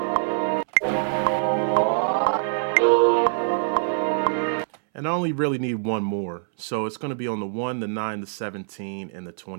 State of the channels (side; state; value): left; silent; 62 dB below the other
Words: And I only really need one more. So it's going to be on the 1, the 9, the 17, and the